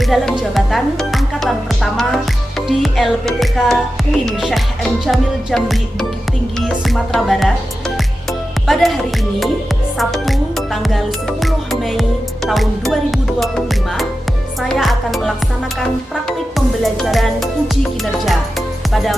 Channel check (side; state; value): both; normal; correlation 0.92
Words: dalam jabatan angkatan pertama di LPTK UIN Syekh M. Jamil Jambi, Bukit Tinggi, Sumatera Barat. Pada hari ini, Sabtu tanggal 10 Mei tahun 2025, saya akan melaksanakan praktik pembelajaran uji kinerja pada